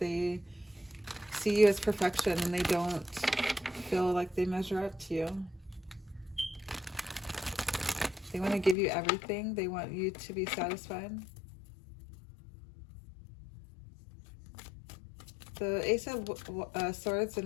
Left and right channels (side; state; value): right; drops out; at 8.8 s